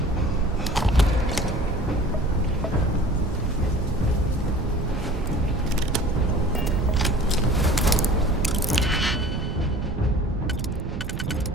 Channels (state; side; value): noise; right; rumble, 5 dB below the sound